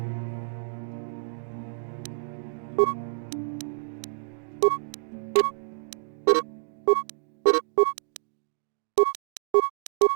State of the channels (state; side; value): silent; left; digital silence